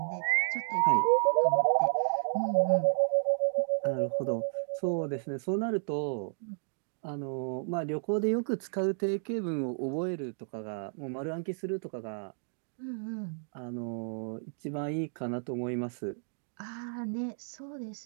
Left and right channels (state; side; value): silent; left; digital silence